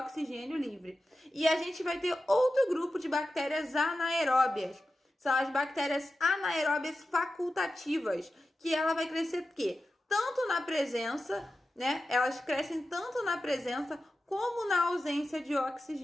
livre. E a gente vai ter outro grupo de bactérias anaeróbias. São as bactérias anaeróbias facultativas, que ela vai crescer o quê? Tanto na presença, né? Elas crescem tanto na presença como na ausência de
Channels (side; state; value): both; normal; correlation 0.93